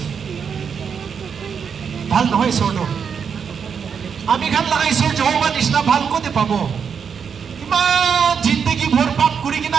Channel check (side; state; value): left; quieter; 6.7 dB